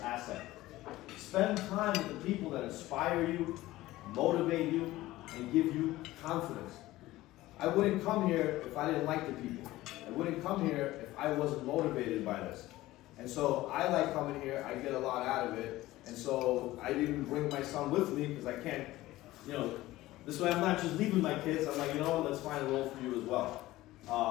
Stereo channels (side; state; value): right; quieter; 17.1 dB